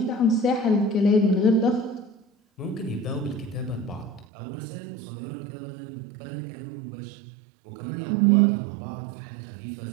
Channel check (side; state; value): left; drops out; at 4.2 s